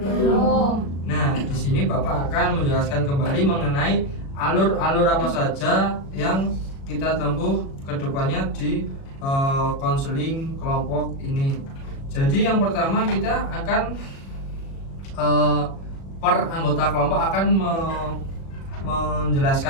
Nah, di sini Bapak akan menjelaskan kembali mengenai alur-alur apa saja yang kita tempuh ke depannya di konseling kelompok ini. Jadi yang pertama kita akan per anggota kelompok akan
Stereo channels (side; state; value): right; late; 36 ms